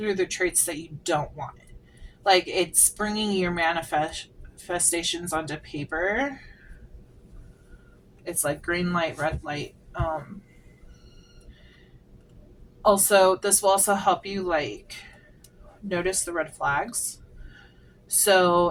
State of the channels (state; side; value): identical; both; correlation 1.00